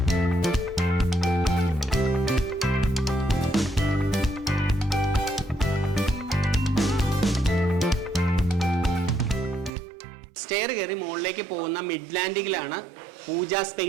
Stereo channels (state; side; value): drops out; left; at 9.7 s